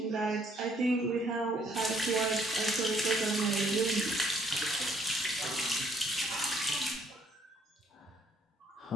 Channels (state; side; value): normal; both; correlation 0.66